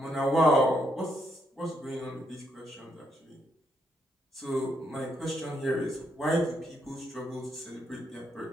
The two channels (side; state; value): both; normal; correlation 0.76